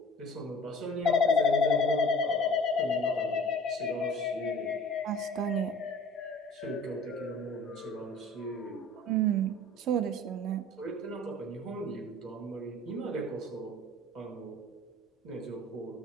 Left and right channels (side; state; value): both; normal; correlation 0.46